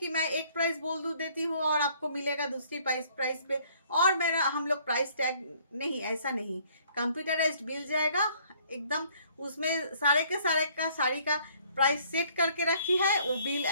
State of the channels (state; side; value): inverted; both; correlation -0.60